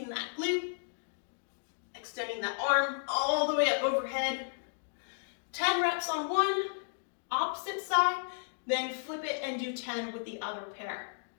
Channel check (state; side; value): silent; right; digital silence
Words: that glute, extending that arm all the way up overhead. 10 reps on one, opposite side, then flip it and do 10 with the other pair.